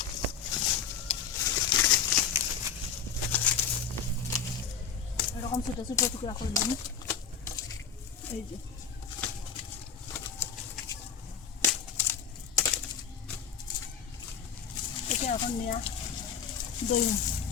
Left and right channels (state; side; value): quieter; right; 7.0 dB